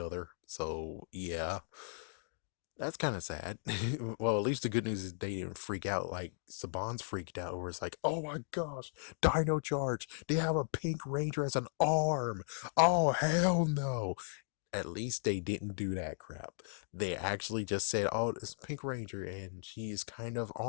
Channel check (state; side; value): silent; right; digital silence